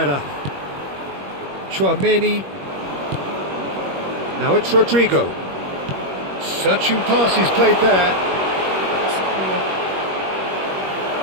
Chouameni. Now it's Rodrigo. Searching pass he's played there.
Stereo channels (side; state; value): left; late; 21 ms